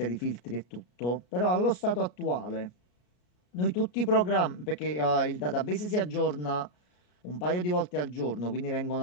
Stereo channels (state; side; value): late; right; 33 ms